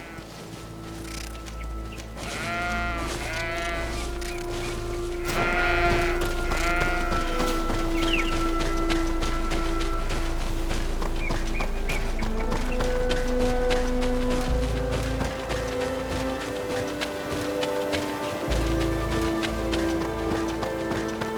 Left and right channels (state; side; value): identical; both; correlation 1.00